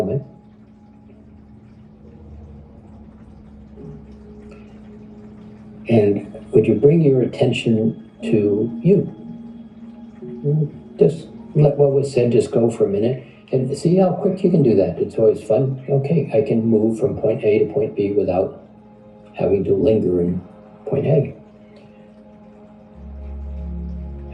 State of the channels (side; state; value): both; identical; correlation 1.00